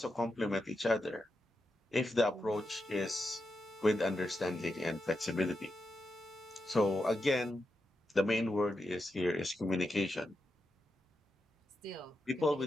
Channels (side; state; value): both; normal; correlation 0.87